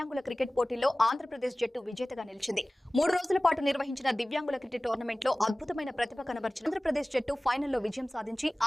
cricket పోటీలో ఆంధ్రప్రదేశ్ జట్టు విజేతగా నిలిచింది. 3 రోజుల పాటు నిర్వహించిన దివ్యాంగుల క్రికెట్ టోర్నమెంట్ లో అద్భుతమైన ప్రతిభ కనబర్చిన ఆంధ్రప్రదేశ్ జట్టు ఫైనల్లో విజయం సాధించి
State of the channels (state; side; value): normal; both; correlation 0.98